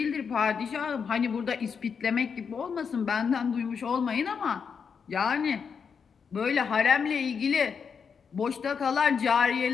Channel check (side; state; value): right; quieter; 6.3 dB